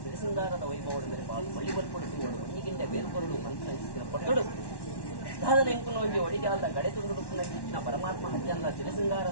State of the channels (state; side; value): late; right; 1.1 ms